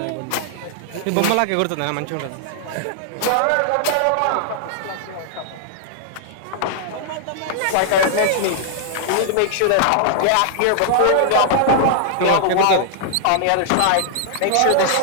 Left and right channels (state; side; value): different; both; correlation -0.01